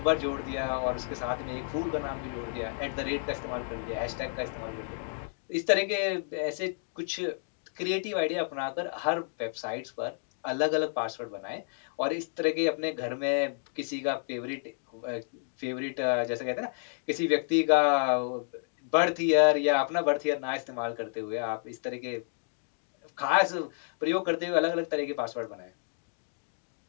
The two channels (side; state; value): right; silent; digital silence